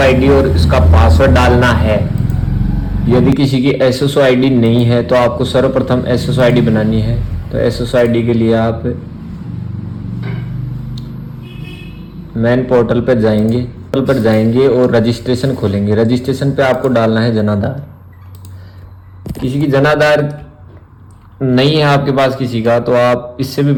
और इसका पासवर्ड डालना है। यदि किसी की SSID नहीं है तो आपको सर्वप्रथम SSID बनानी है। तो SSID के लिए आप मेन पोर्टल पर जाएंगे और रजिस्ट्रेशन खोलेंगे। रजिस्ट्रेशन पे आपको डालना है जनाधार। किसी की जनाधार नहीं है आपके पास किसी का तो आप इससे भी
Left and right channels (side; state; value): both; identical; correlation 1.00